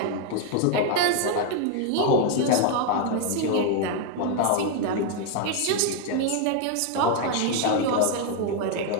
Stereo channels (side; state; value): both; different; correlation 0.01